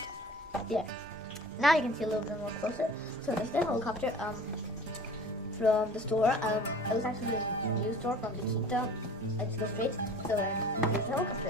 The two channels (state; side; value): noise; right; rumble, 24 dB below the sound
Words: yeah. Now you can see a little bit more closer. So this is the helicopter from the store. It was actually a new store from the Kita. I just go straight. So here's the